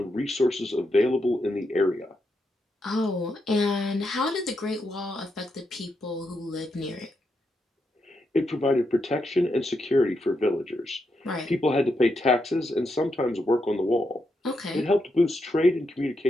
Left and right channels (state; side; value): normal; both; correlation 0.83